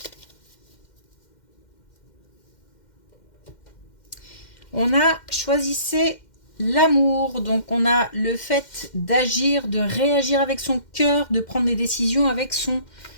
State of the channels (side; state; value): right; late; 2.1 ms